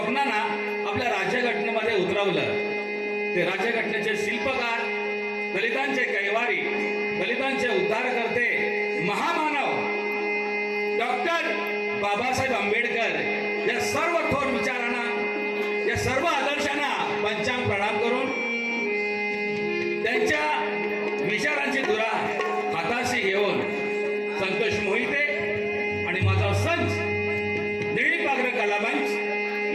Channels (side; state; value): both; identical; correlation 1.00